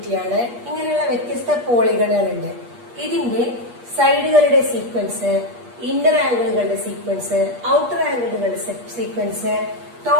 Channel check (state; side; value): late; left; 8.4 ms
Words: ഇങ്ങനെയുള്ള വ്യത്യസ്ത പോളിഗണുകളുണ്ട്. ഇതിന്റെ സൈഡുകളുടെ സീക്വൻസ്, ഇന്നർ ആംഗിളുകളുടെ സീക്വൻസ്, ഔട്ടർ ആംഗിളുകളുടെ sequence,